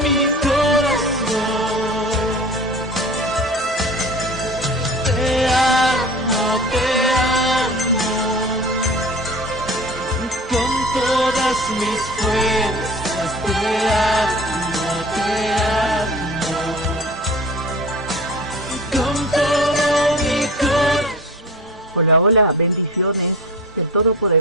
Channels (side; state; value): both; normal; correlation 0.38